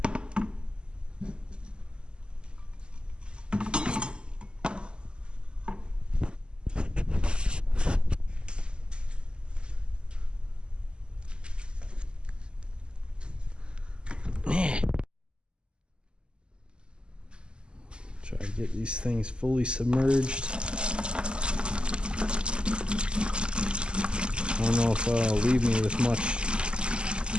Try to get these things fully submerged. I don't know if it'll leave me with much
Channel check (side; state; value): left; late; 0.050 ms